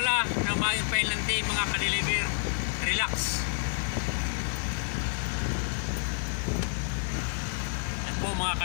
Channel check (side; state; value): right; silent; 58 dB below the other